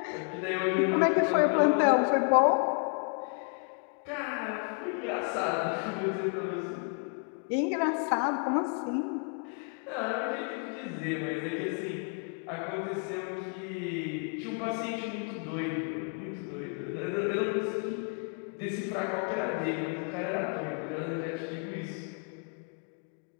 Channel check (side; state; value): right; quieter; 39.4 dB